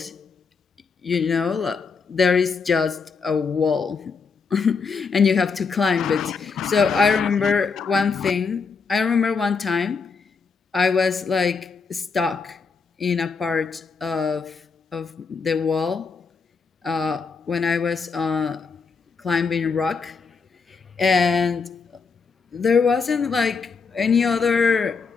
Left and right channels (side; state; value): right; quieter; 5.1 dB